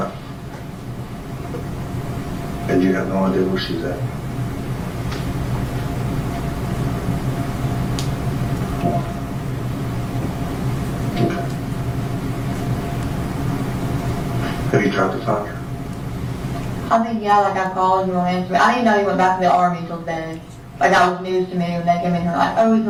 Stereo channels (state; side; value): identical; both; correlation 1.00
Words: And you have no idea where she's at? Okay. Have you tried to find her? I mean, yeah, like I called, you won't answer me. I didn't know he went back to the Army till today. Like that was news to me when they came in here like, oh, he's